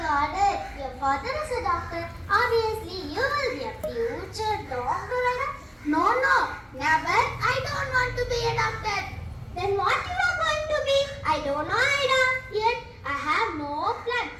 got it. Your father is a doctor. Obviously, you will be a future doctor, Ida. No, never. I don't want to be a doctor. Then what you are going to be? I don't know, Ida. Yet, I have no plan.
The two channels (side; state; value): both; identical; correlation 1.00